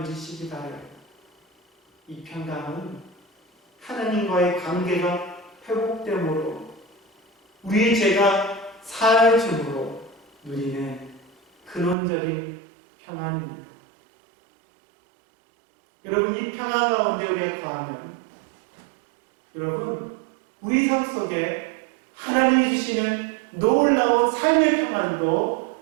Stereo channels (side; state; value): left; drops out; at 12.0 s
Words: 누리시기 바라요. 이 평강은 하나님과의 관계가 회복됨으로 우리의 죄가 사해짐으로 누리는 근원적인 평안입니다. 여러분, 이 평안 가운데 우리가 거하면 여러분, 우리 삶 속에 하나님이 주시는 놀라운 삶의